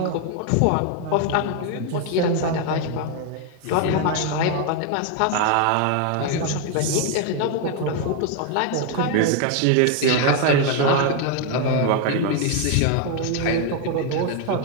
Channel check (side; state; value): both; different; correlation 0.01